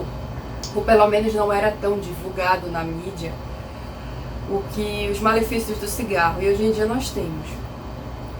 ou pelo menos não era tão divulgado na mídia, os malefícios do cigarro, e hoje em dia nós temos.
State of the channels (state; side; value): identical; both; correlation 1.00